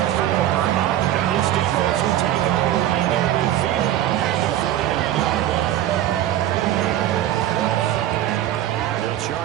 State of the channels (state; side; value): quieter; left; 12.6 dB